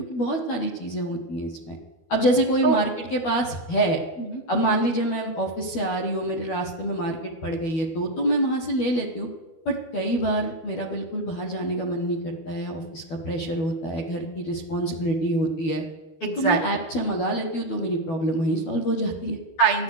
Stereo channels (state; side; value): late; right; 12 ms